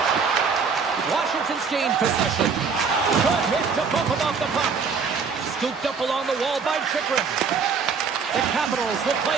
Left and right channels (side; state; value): left; quieter; 5.5 dB